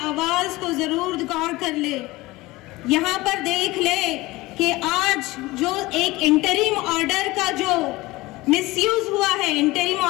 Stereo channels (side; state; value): right; quieter; 20.2 dB